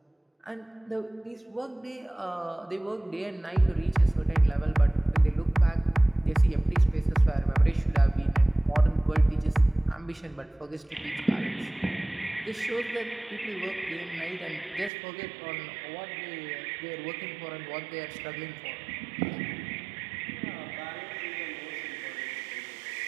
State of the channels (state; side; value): drops out; left; at 14.9 s